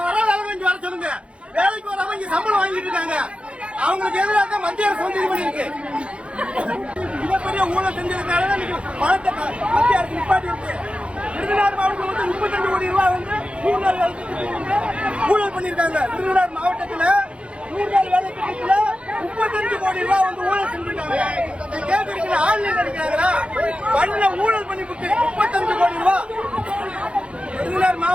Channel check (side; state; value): left; late; 0.060 ms